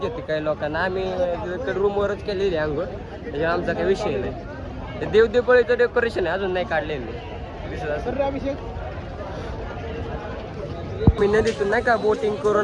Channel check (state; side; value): identical; both; correlation 1.00